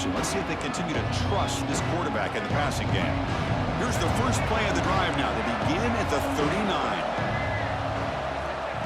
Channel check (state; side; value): identical; both; correlation 1.00